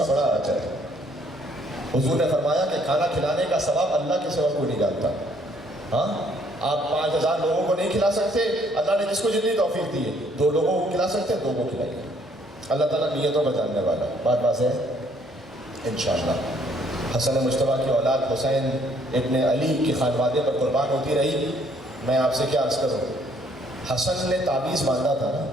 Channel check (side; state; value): both; normal; correlation 0.65